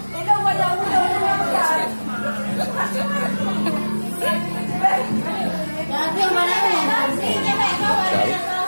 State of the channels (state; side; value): inverted; both; correlation -1.00